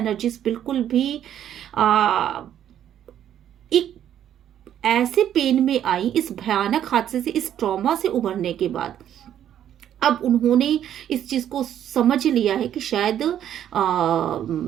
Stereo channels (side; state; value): left; quieter; 10.5 dB